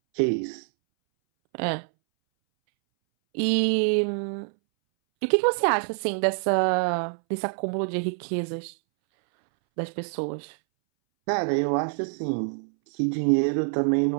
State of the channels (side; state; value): left; silent; 61 dB below the other